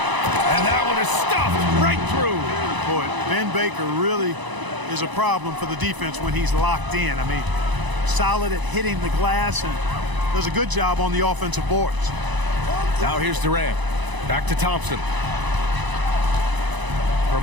that one is stuffed right through. Boy, Ben Baker really is a problem for the defense when he's locked in. I mean, solid at hitting the glass and does a good job on the offensive boards. Now here's Durant. Back to Thompson. From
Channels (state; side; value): late; left; 1.0 ms